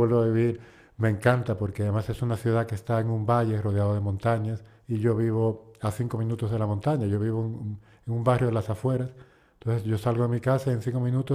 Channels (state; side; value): identical; both; correlation 1.00